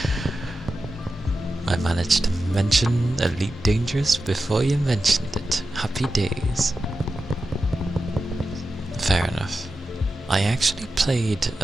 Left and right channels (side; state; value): both; normal; correlation 0.91